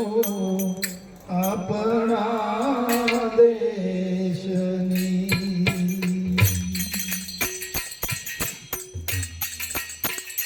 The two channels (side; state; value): both; identical; correlation 1.00